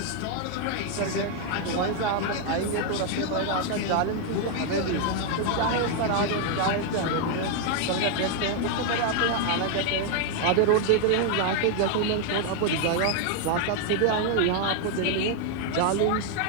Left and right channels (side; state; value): both; different; correlation 0.00